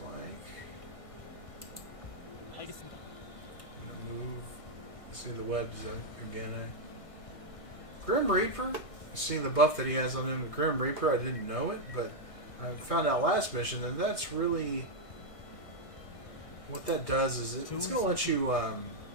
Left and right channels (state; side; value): late; right; 1.6 ms